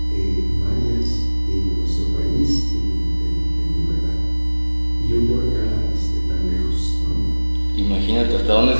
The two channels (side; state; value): both; inverted; correlation -1.00